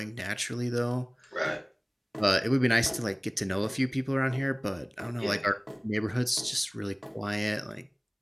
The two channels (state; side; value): identical; both; correlation 1.00